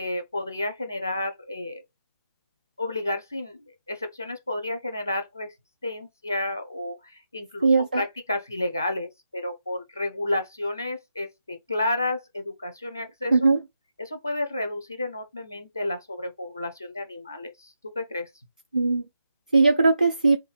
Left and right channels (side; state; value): both; inverted; correlation -0.85